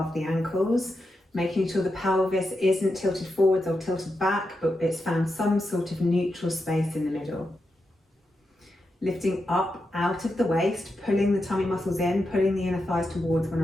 the ankles, making sure the pelvis isn't tilted forwards or tilted back, but it's found some sort of neutral space in the middle. Lifting up out of the waist, pulling the tummy muscles in, pulling the inner thighs towards one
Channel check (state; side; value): normal; both; correlation 0.87